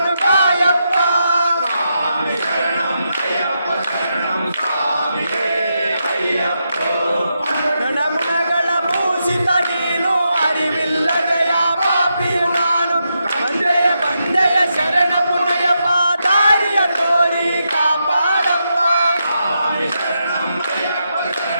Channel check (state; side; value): inverted; both; correlation -0.84